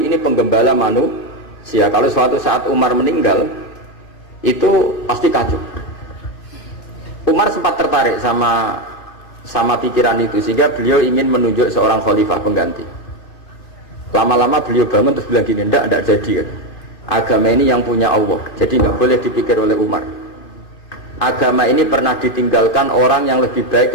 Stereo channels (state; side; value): late; right; 2.6 ms